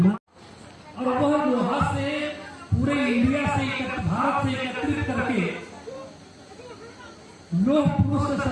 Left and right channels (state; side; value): identical; both; correlation 1.00